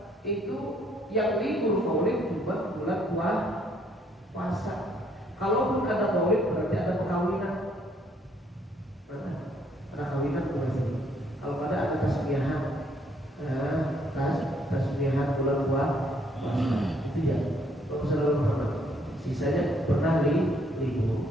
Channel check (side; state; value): both; normal; correlation 0.67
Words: itu yang libur Maulid cuma bulan puasa. Kalaupun ada Maulid berarti ada perkawinan. Ada kawinan bukan sih? Kalau ada tasbihan, tasbihan bulan puasa itu ya. Kalau saudara Muhammad, sisanya pernah libur.